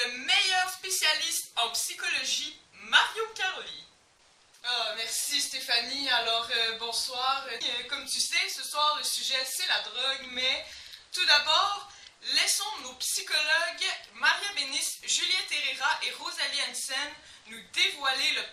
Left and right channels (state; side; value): identical; both; correlation 1.00